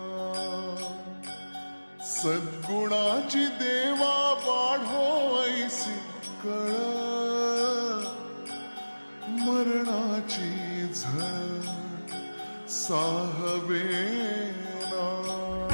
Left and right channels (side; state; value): both; inverted; correlation -1.00